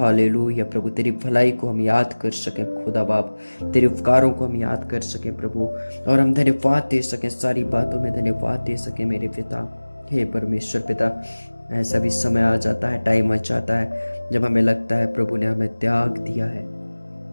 प्रभु, तेरी भलाई को हम याद कर सकें खुदा बाप, तेरे उपकारों को हम याद कर सकें प्रभु, और हम धन्यवाद दे सकें, सारी बातों में धन्यवाद दे सकें मेरे पिता। हे परमेश्वर पिता, ऐसा भी समय आ जाता है, टाइम आ जाता है जब हमें लगता है प्रभु ने हमें त्याग दिया है।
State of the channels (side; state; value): both; inverted; correlation -1.00